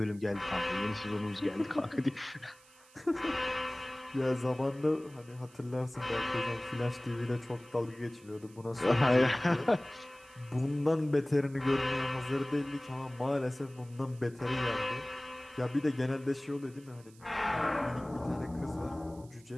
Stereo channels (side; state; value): right; noise; hiss, 26 dB below the sound